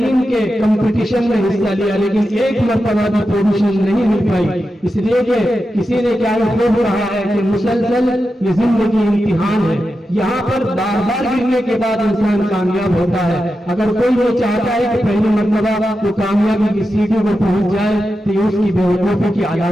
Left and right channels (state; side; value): normal; both; correlation 0.90